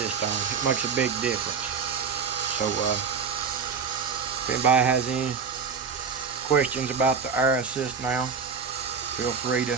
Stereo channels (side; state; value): left; quieter; 5.9 dB